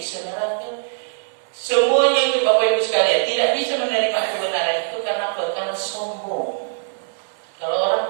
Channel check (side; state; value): left; silent; digital silence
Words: neraka. Semuanya itu Bapak Ibu sekalian tidak bisa menerima kebenaran itu karena apa? Karena sombong. Kalau